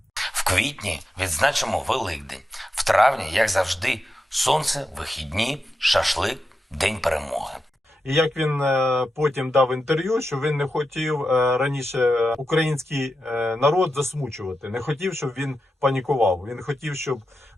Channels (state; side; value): normal; both; correlation 0.89